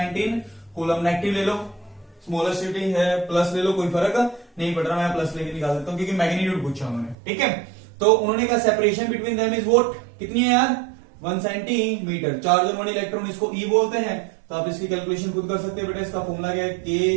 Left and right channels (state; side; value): drops out; left; at 7.2 s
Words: कूलम। नेगेटिव ले लो, स्मॉलेस्ट यूनिट है, प्लस ले लो, कोई फर्क नहीं पड़ रहा, मैं प्लस लेके निकाल देता हूं क्योंकि मैग्नीट्यूड पूछा उन्होंने, ठीक है। तो उन्होंने कहा separation between them is what, कितनी है यार 1 सेंटीमीटर। चार्ज ऑन 1 इलेक्ट्रॉन इसको ई बोलते हैं, तो आप इसकी कैलकुलेशन खुद कर सकते हैं बेटा। इसका फॉर्मूला क्या है,